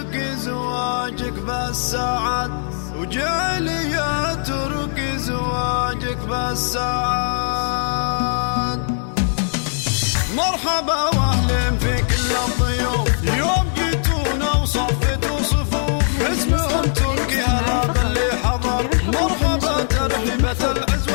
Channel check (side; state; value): right; silent; digital silence